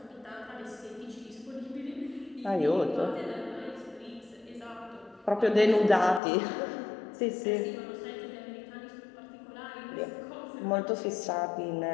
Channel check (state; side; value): drops out; right; at 6.2 s